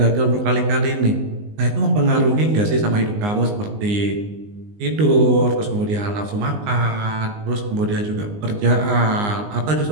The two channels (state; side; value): late; left; 19 ms